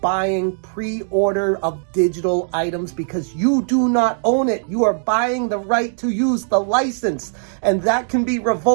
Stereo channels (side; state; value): left; silent; digital silence